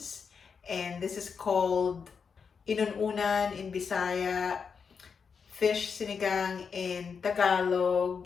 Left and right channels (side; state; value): right; quieter; 6.0 dB